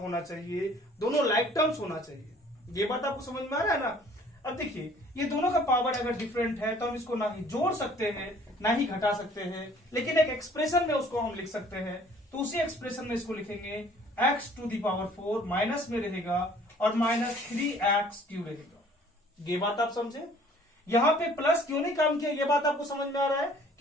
चाहिए, दोनों लाइक टर्म्स होना चाहिए। ये बात आपको समझ में आ रहा है ना। अब देखिए, ये दोनों का पावर अगर डिफरेंट है तो हम इसको ना ही जोड़ सकते हैं ना ही घटा सकते हैं, लेकिन एक एक्सप्रेशन में उसको हम लिख सकते हैं। तो उसी एक्सप्रेशन में इसको लिखेंगे x to the power 4 minus में रहेगा और माइनस 3x क्यूब रहेगा। ये बात आप समझे। यहाँ पे प्लस क्यों नहीं काम किया, ये बात आपको समझ में आ रहा है,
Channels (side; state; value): both; normal; correlation 0.55